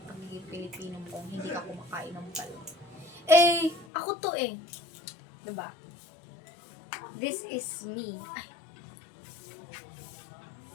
pagiging Pilipino mo kung hindi ka kumakain ng balot. Eh, ako to eh. Diba? This is me. Ay.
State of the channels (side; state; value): right; drops out; at 3.9 s